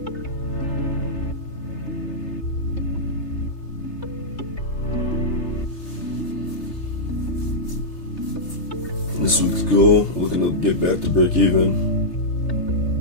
get back to break even.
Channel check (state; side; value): late; right; 3.3 ms